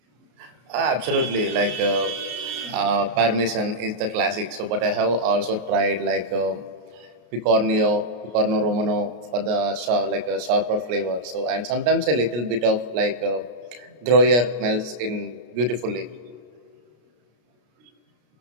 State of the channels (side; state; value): left; late; 33 ms